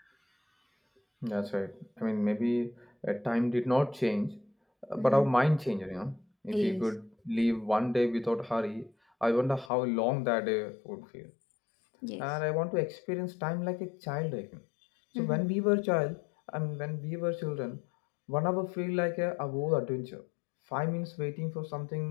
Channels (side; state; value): right; drops out; at 9.7 s